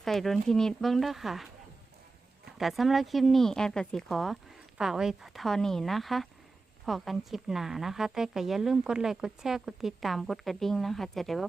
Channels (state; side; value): quieter; left; 3.7 dB